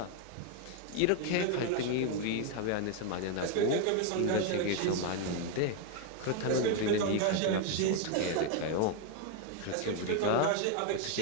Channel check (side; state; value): both; different; correlation 0.01